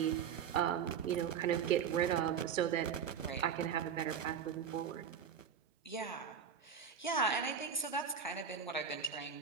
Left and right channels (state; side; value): quieter; left; 7.4 dB